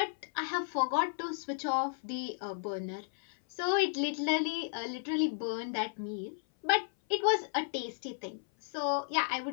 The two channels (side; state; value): right; silent; 55 dB below the other